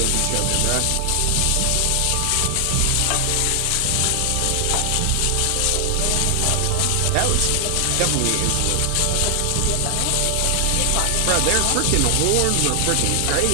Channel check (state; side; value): different; both; correlation 0.00